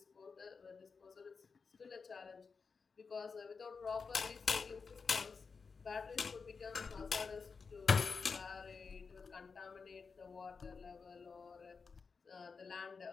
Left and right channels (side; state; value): right; quieter; 5.1 dB